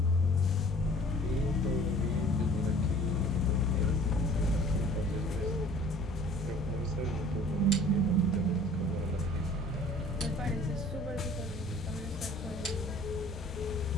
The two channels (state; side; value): normal; both; correlation 0.50